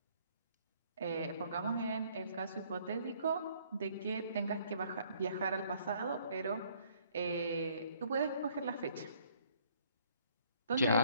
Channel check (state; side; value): inverted; both; correlation -0.62